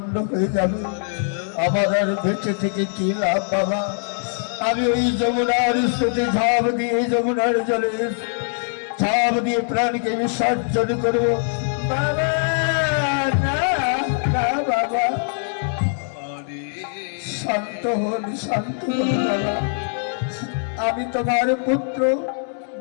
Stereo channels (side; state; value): right; silent; digital silence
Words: হয়ে যাবে, আমার আর বেঁচে থেকে কি লাভ বাবা? আমি ওই যমুনার স্রোতে ঝাঁপ দিয়ে, যমুনার জলে ঝাঁপ দিয়ে প্রাণকে বিসর্জন করবো বাবা। না না বাবা, শান্ত হন, শান্ত হন বাবা। আমি তোমার পুত্র,